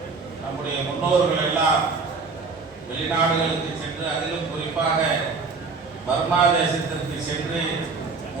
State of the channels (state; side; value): quieter; left; 4.4 dB